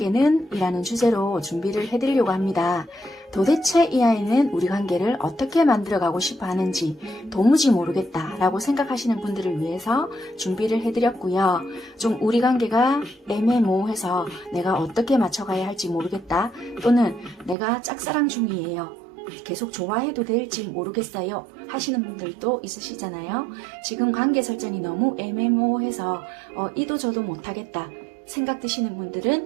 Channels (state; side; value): drops out; left; at 17.6 s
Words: 이라는 주제로 준비를 해드리려고 합니다. 도대체 이 아이는 우리 관계를 어떻게 만들어가고 싶어 하는지 도무지 모르겠다 라고 생각하시는 분들을 위해서 준비를 해드렸고요. 좀 우리 관계가 애매모호해서 내가 어떻게 맞춰가야 할지 모르겠다, 또는 내가 짝사랑 중이에요, 계속 좋아해도 될지 모르겠어요 하시는 분들도 있으시잖아요. 지금 관계 설정이 너무 애매모호해서 이도 저도 못하겠다 생각 드시는